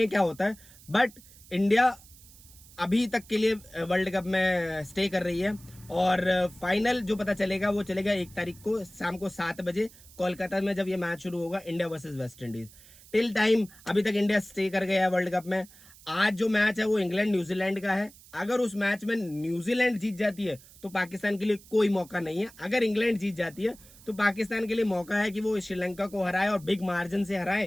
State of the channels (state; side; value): noise; right; hiss, 22 dB below the sound